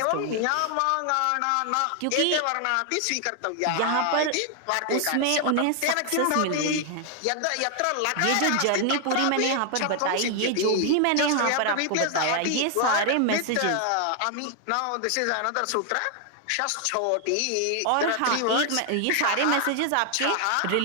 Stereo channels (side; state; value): both; different; correlation 0.00